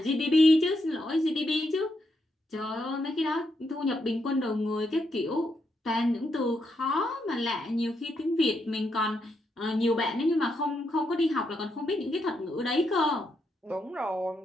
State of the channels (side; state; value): both; normal; correlation 0.80